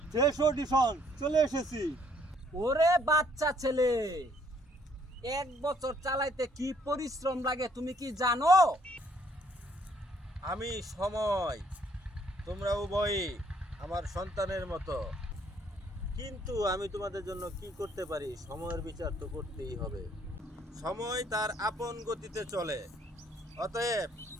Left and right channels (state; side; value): normal; both; correlation 0.65